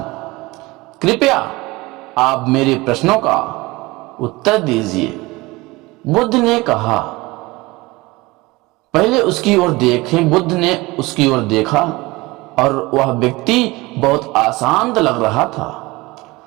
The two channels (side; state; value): left; quieter; 21.9 dB